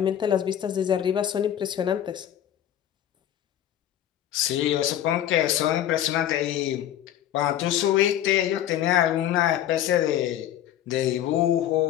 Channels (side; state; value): right; quieter; 11.3 dB